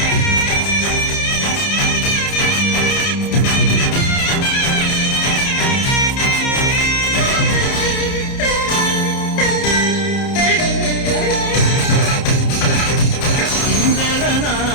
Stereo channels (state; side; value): late; right; 30 ms